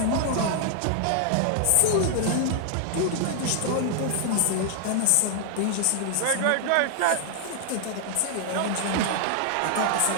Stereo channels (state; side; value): different; both; correlation 0.00